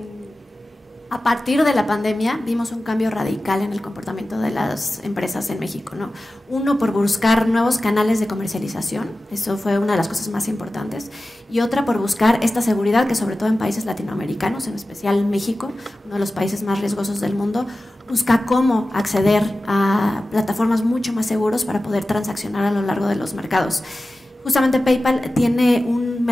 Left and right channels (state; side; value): normal; both; correlation 0.95